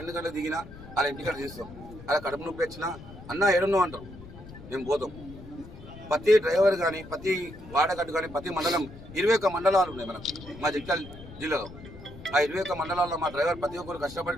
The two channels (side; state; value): left; noise; rumble, 16 dB below the sound